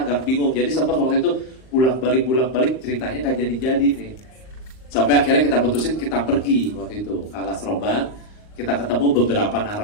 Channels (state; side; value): late; right; 38 ms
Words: agak bingung. Jadi sempat waktu itu bolak-balik ceritanya nggak jadi-jadi nih. Sampai akhirnya kita putusin kita pergi waktu itu ke Alas Roban, kita ketemu beberapa